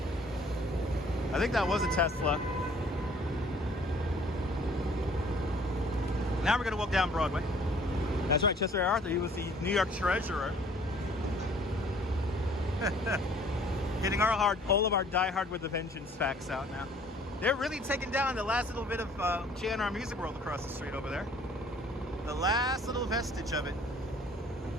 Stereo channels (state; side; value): normal; both; correlation 0.56